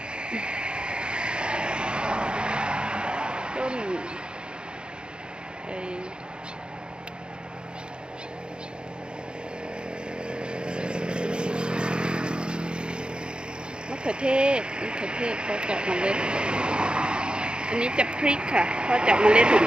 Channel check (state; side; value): late; left; 0.051 ms